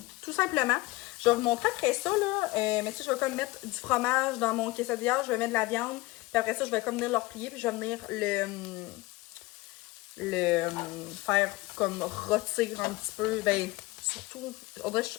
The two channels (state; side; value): quieter; right; 20.4 dB